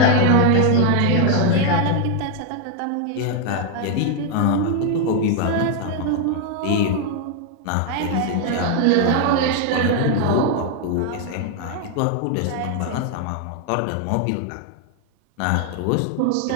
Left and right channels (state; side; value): different; both; correlation 0.00